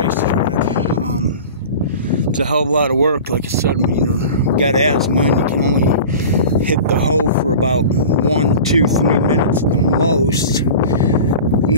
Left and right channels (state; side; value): inverted; both; correlation -0.36